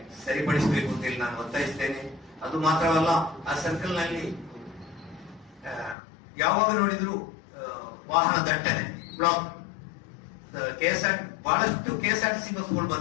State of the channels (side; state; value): right; drops out; at 6.0 s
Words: ಸರಿಪಡಿಸಬೇಕು ಅಂತ ಹೇಳಿ ನಾನು ಒತ್ತಾಯಿಸ್ತೇನೆ. ಅದು ಮಾತ್ರವಲ್ಲ, ಆ ಸರ್ಕಲ್ ನಲ್ಲಿ ಯಾವಾಗ ನೋಡಿದ್ರು ವಾಹನ ದಟ್ಟಣೆ, ಬ್ಲಾಕ್. ಬಹಳಷ್ಟು KSRTC ಬಸ್ಗಳು